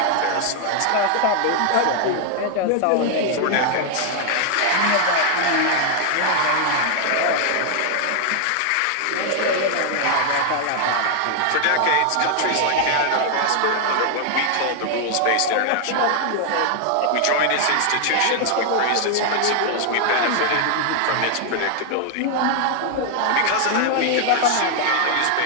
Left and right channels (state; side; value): different; both; correlation 0.00